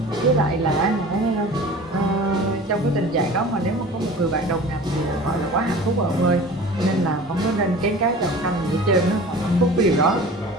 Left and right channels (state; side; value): normal; both; correlation 0.40